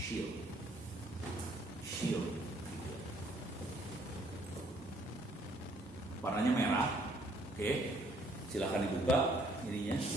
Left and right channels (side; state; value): both; normal; correlation 0.64